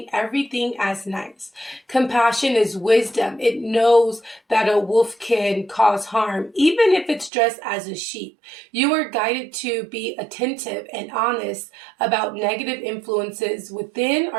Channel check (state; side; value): drops out; left; at 7.3 s